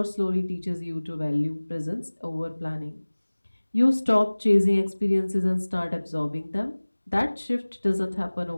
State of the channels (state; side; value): inverted; both; correlation -1.00